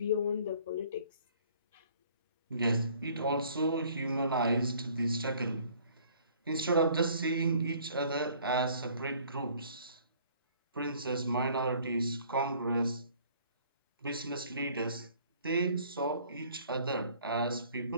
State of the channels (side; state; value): both; inverted; correlation -0.56